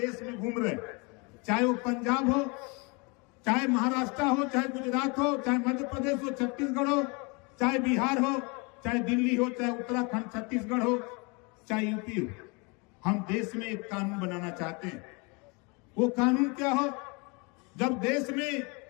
में घूम रहे, चाहे वो पंजाब हो, चाहे महाराष्ट्र हो, चाहे गुजरात हो, चाहे मध्य प्रदेश हो, छत्तीसगढ़ हो, चाहे बिहार हो, चाहे दिल्ली हो, चाहे उत्तराखंड छत्तीसगढ़ हो, चाहे यूपी हो। हम देश में एक कानून बनाना चाहते हैं। वो कानून क्या हो? जब देश में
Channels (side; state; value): right; quieter; 30.0 dB